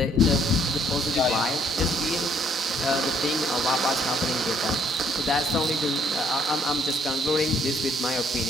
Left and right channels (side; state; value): both; normal; correlation 0.65